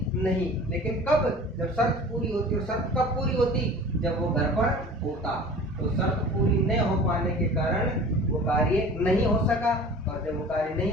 नहीं। लेकिन कब, जब शर्त पूरी होती। और शर्त कब पूरी होती, जब वो घर पर होता। तो शर्त पूरी नहीं हो पाने के कारण वो कार्य नहीं हो सका, और जब वो कार्य नहीं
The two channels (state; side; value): normal; both; correlation 0.42